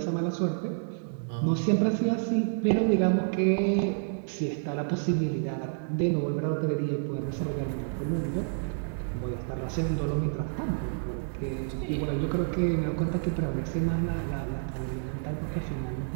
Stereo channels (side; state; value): left; silent; 58 dB below the other